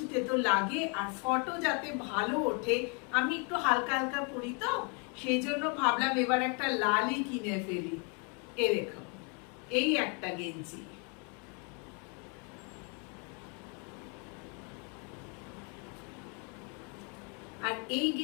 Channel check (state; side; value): quieter; right; 35.5 dB